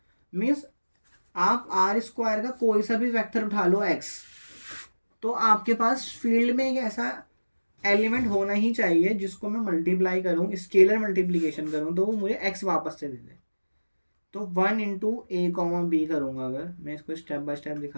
मीन्स आप आर स्क्वायर का कोई सा भी वेक्टर उठा लो x, तो आपके पास फील्ड में एक ऐसा एलिमेंट होना ही चाहिए जिसको मैं मल्टीप्लाई करूं, स्केलर मल्टीप्लीकेशन करूं, तो वो मुझे x वापस से दे दे। तो 1 × a, b करूंगा, अगर मैं इसको स्टेप बाय स्टेप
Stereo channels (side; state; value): both; inverted; correlation -1.00